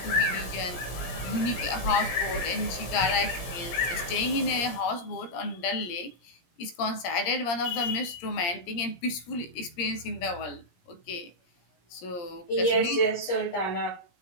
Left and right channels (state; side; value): late; right; 17 ms